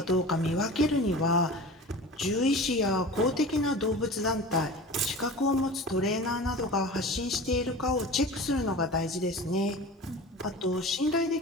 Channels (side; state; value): both; normal; correlation 0.35